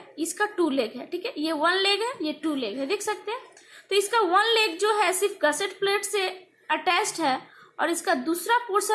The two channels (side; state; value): both; identical; correlation 1.00